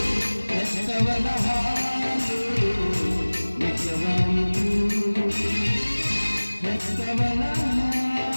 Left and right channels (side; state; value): both; inverted; correlation -1.00